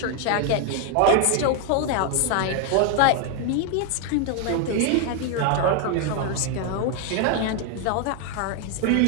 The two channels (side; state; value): both; different; correlation 0.01